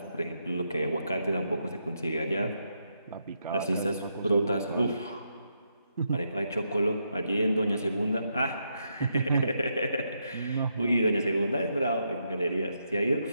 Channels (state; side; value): inverted; both; correlation -0.81